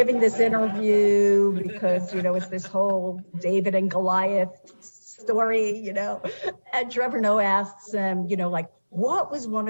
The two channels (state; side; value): inverted; both; correlation -1.00